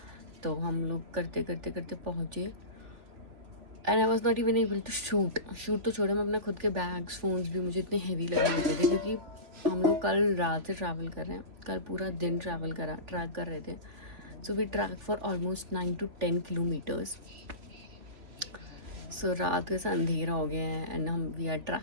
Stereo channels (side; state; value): left; late; 3.4 ms